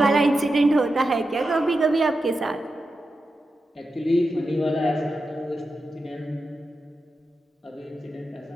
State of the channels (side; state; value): both; normal; correlation 0.89